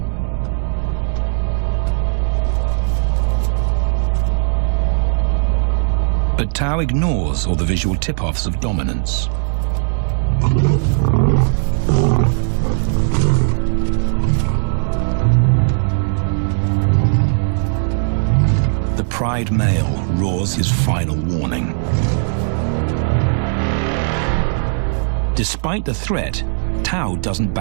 But Tao ignores all the visual tip-offs of dominance. The pride male roars his final warning. Despite the threat, Tao doesn't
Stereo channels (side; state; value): left; silent; digital silence